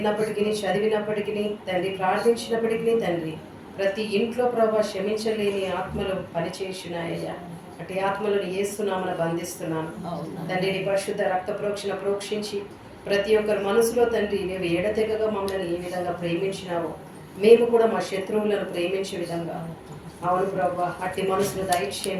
చదివినప్పటికీ తండ్రి ప్రార్థించినప్పటికీ తండ్రి ప్రతి ఇంట్లో ప్రభావ క్షమించలేని ఆత్మలు పనిచేసినాయ్యా. అటు ఆత్మలను యేసునామమున బంధిస్తున్నాను తండ్రి. నీ పరిశుద్ధ రక్త ప్రోక్షణ ప్రోక్షించి ప్రతి ఒక్కరి మనసులో తండ్రి నీవు ఎడతెగగా మమ్మల్ని ఏ విధంగా ప్రేమించినావో మేము కూడా మా శత్రువులను ప్రేమించే విధంగా అవును ప్రభా అట్టి మనసును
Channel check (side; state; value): both; identical; correlation 1.00